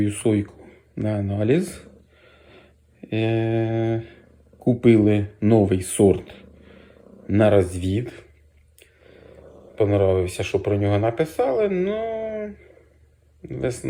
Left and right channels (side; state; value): both; identical; correlation 1.00